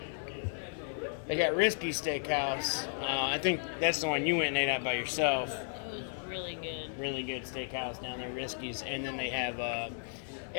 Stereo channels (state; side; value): silent; right; digital silence